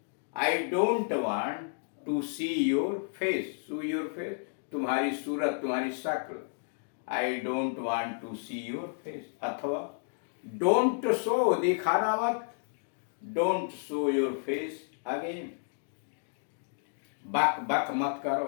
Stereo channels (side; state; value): right; silent; digital silence